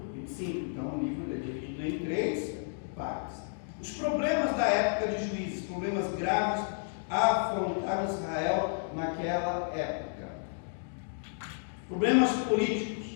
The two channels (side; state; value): right; silent; digital silence